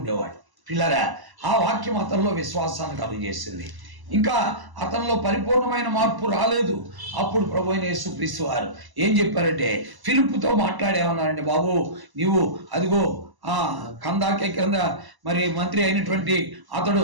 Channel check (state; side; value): late; left; 1.0 ms